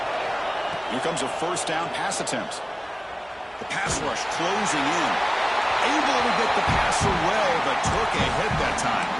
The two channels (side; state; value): both; identical; correlation 1.00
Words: Here comes a first down pass attempt. The pass rush closing in. Able to get the pass away, but took a hit that time.